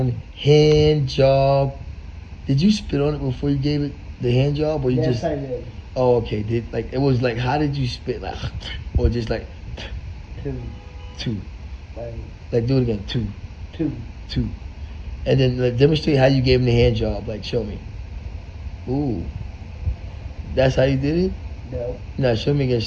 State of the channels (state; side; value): identical; both; correlation 1.00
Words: hand job. Did you spit on it before you gave it the hand job, or you Yes, just? I did. Oh, okay. It was like, how did you spit, like, or just like two? Like do it again, two, and then like, demonstrate how you gave him the hand job. Like, show me. Ooh, that's how you did it. No. No, show me again